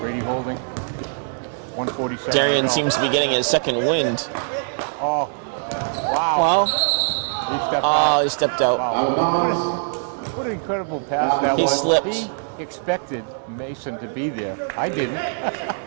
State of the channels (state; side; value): silent; left; digital silence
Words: holding. 147 Darian to go. seems to be getting his second wind. Oh, wow. Well, He stepped out. he stepped out. Wow. What an incredible pass that He was. slipped. He expected Mason to be there. I didn't.